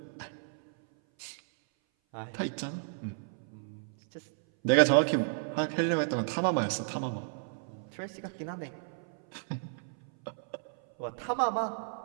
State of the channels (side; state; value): left; silent; 56 dB below the other